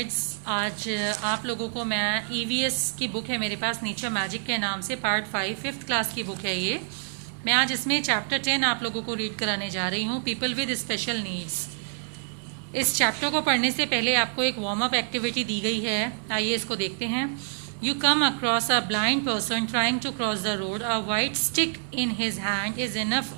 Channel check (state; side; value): silent; left; 60 dB below the other